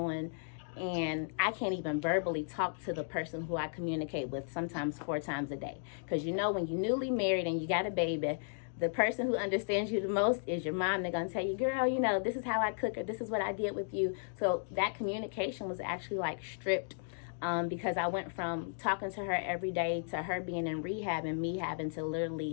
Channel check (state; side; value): silent; right; digital silence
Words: And I can't even verbally talk to the person who I communicate with sometimes 4 times a day. Because, you know, when you're newly married and you got a baby, the person who understands you the most is your mom. They're going to tell you, girl, you know, this is how I cook, or this is what I did with you. So that communication was actually like stripped. Because I went from talking to her every day to her being in rehab and me having to literally